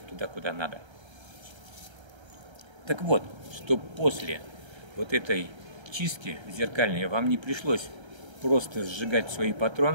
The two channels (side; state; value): left; late; 1.3 ms